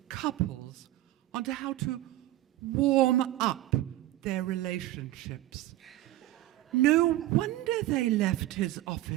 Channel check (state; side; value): quieter; left; 15.5 dB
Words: couples on how to warm up their relationships. No wonder they left his